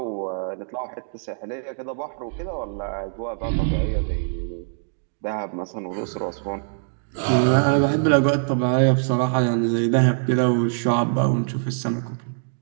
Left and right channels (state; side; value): silent; left; digital silence